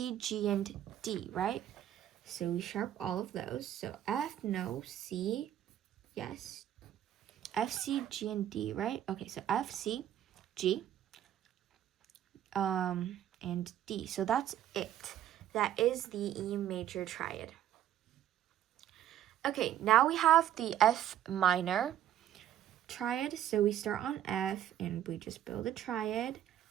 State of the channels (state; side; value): quieter; left; 11.4 dB